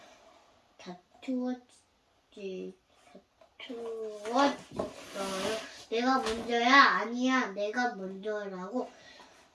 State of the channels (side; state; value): both; identical; correlation 1.00